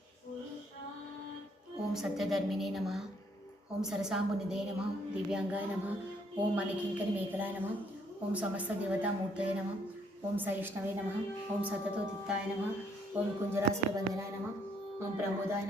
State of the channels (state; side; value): normal; both; correlation 0.68